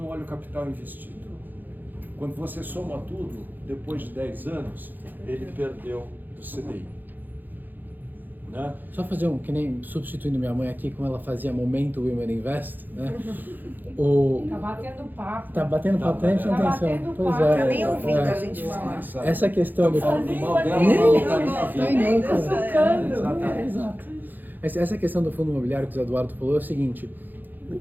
olha o capital investido. Quando você soma tudo, depois de 10 anos, ele perdeu do CDI. Né? Só fazer que nem substituindo minha mãe aqui, como ela fazia Momento Women Invest, né? Tá batendo papo. Tá batendo papo, tá prestando atenção. Pois é. Tá nem ouvindo a gente falar. Essa questão do... Essa questão do fundo imobiliário que o Eduardo falou é o seguinte,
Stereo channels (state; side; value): late; left; 0.087 ms